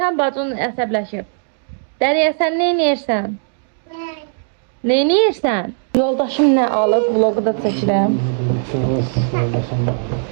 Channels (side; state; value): left; silent; digital silence